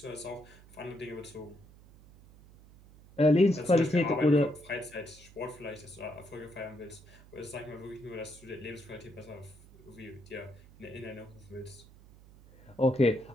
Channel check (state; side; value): noise; right; hum, 22 dB below the sound